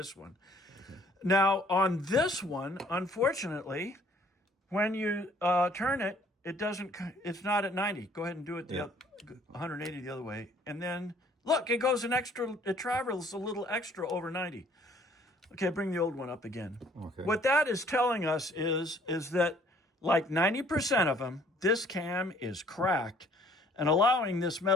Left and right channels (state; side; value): normal; both; correlation 0.59